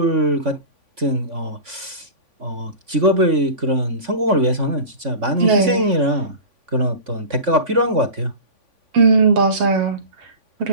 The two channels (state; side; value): late; left; 3.5 ms